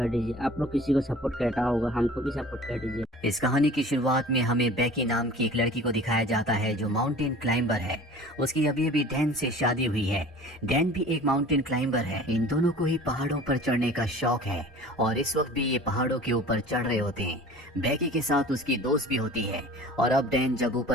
दीजिए। आप लोग किसी को सपोर्ट करता होगा, हमको भी सपोर्ट कर दीजिए। इस कहानी की शुरुआत में हमें बेकी नाम की एक लड़की को दिखाया जाता है जो माउंटेन क्लाइंबर है। उसकी अभी अभी डैन से शादी हुई है। डैन भी एक माउंटेन क्लाइंबर है। इन दोनों को ही पहाड़ों पर चढ़ने का शौक है और इस वक्त भी ये पहाड़ों के ऊपर चढ़ रहे होते हैं। बेकी के साथ उसकी दोस्त भी होती है और अब डैन जब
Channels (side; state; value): both; normal; correlation 0.43